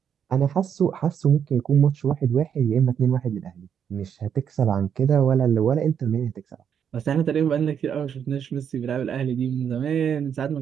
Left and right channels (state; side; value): quieter; left; 8.1 dB